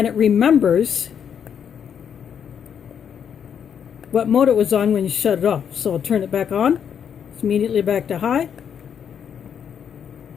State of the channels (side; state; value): right; quieter; 8.0 dB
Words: it remembers what mode it was on when you shut it off. So I'll turn it back on. It's immediately back to high.